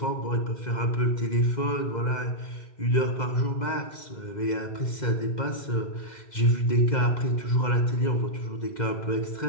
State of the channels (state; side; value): late; right; 2.1 ms